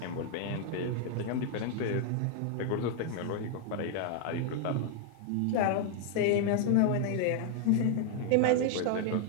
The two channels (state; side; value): different; both; correlation 0.00